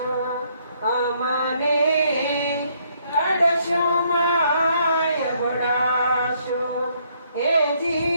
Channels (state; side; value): inverted; both; correlation -0.69